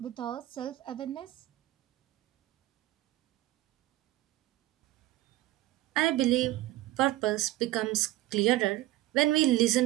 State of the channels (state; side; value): quieter; left; 15.9 dB